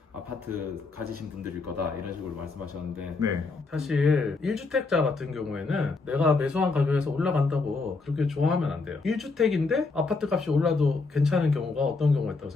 아파트 가지신 분들일 거다, 이런 식으로 말씀하셨는데, 네. 사실 1주택자 같은 경우에는 내가 매수한 가격에서 올라간다고 그렇게 좋아하면 안 돼요. 1주택인데 아파트 값이 올라도 괜찮은 경우가 어떤 경우가 있다고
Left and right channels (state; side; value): quieter; right; 3.9 dB